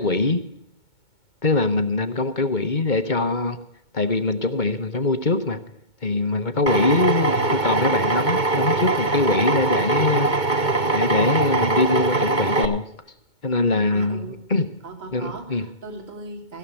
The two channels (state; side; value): late; right; 2.2 ms